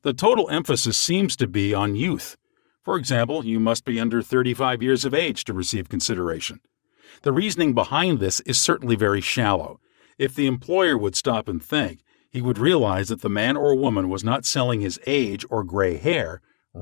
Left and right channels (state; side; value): silent; right; digital silence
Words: The total emphasis seems to be on youth. For example, you must be under 35 years of age to receive consideration. The reasoning behind this is certainly very shallow. If the employer would stop and think, he would realize that the man or woman was not selling his age or gray hair.